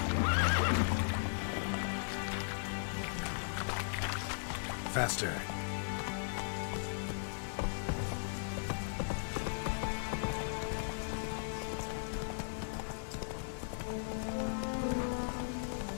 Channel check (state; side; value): silent; right; digital silence